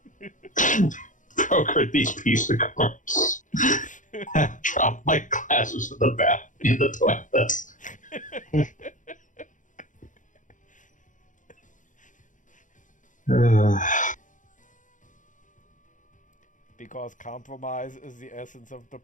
brokered these piece of cards, have dropped my glasses in the toilet. Because compromise is the essence of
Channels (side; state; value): right; late; 0.37 ms